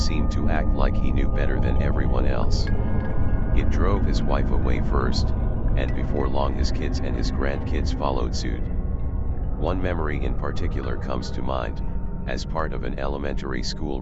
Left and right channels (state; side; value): identical; both; correlation 1.00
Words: to act like he knew better than everyone else. It drove his wife away first, and before long his kids and his grandkids followed suit. One memory in particular comes to mind. As part of an elementary school